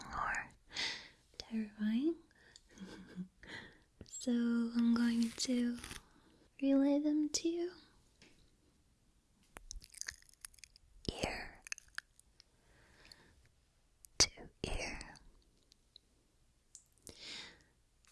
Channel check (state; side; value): identical; both; correlation 1.00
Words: or terrifying. So I'm going to relay them to you. Ear to ear.